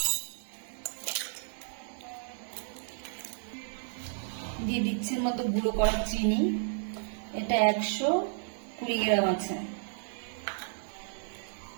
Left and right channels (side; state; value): left; silent; digital silence